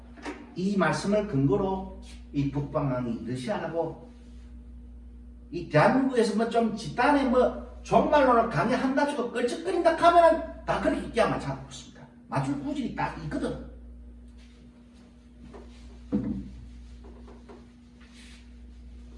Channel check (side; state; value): both; identical; correlation 1.00